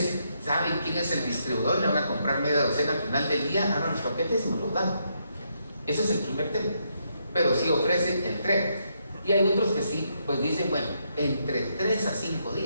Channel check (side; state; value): both; inverted; correlation -0.77